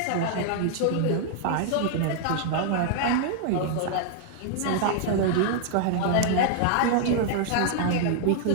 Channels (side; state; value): both; different; correlation -0.01